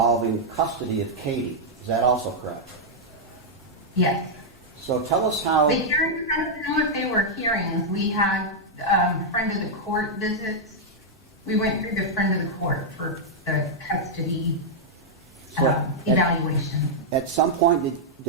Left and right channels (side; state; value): both; normal; correlation -0.05